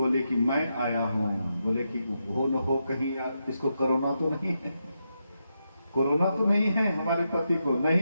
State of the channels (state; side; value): inverted; both; correlation -0.85